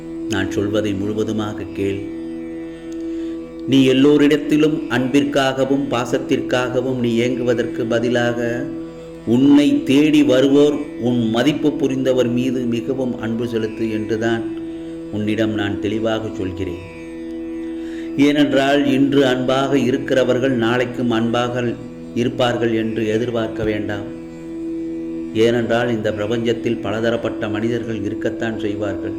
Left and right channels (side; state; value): both; identical; correlation 1.00